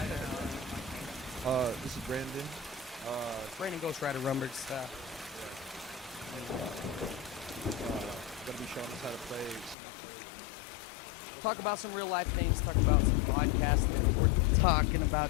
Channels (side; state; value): right; drops out; at 9.8 s